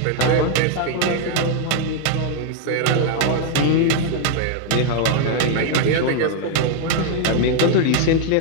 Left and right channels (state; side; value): different; both; correlation 0.00